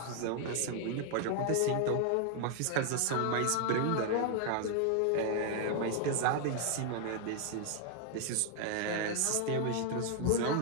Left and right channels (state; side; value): different; both; correlation 0.00